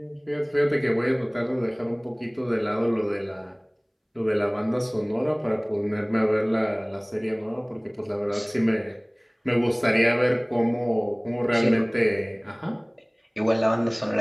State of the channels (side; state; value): both; identical; correlation 1.00